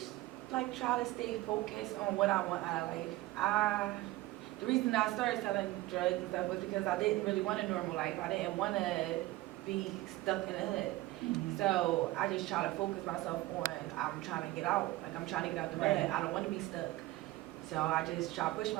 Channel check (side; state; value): left; quieter; 18.1 dB